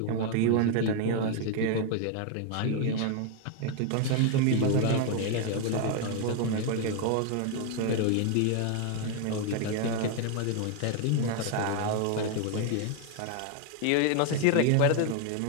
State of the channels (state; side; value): different; both; correlation 0.01